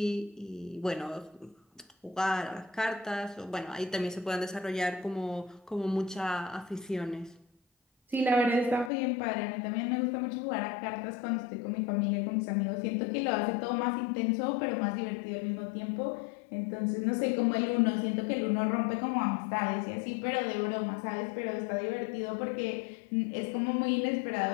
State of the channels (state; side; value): drops out; right; at 8.9 s